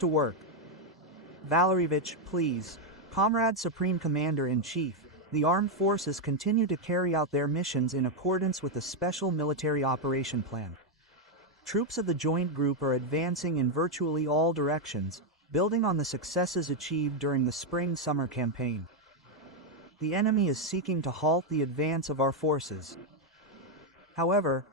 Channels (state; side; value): normal; both; correlation 0.02